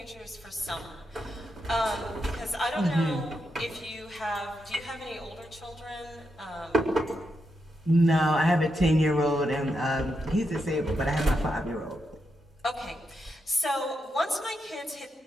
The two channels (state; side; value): normal; both; correlation 0.84